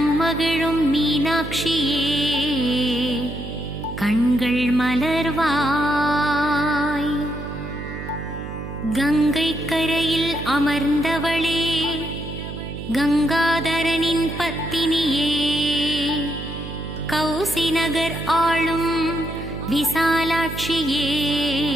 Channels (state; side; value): noise; right; hum, 9 dB below the sound